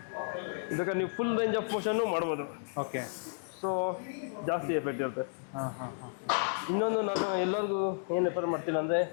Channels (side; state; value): right; silent; digital silence